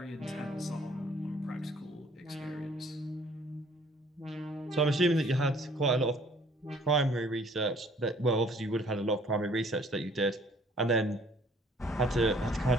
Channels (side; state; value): both; normal; correlation 0.58